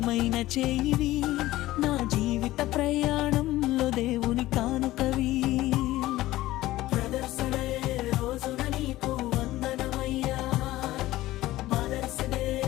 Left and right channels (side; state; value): right; quieter; 16.5 dB